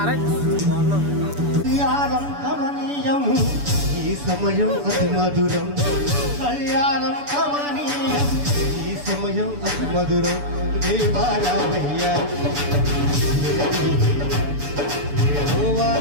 రైట్. కళ్యాణం కమనీయం ఈ సమయం అతి మధురం. కళ్యాణం కమనీయం ఈ సమయం అతి మధురం. దేవారామయ్య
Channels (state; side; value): late; left; 6.9 ms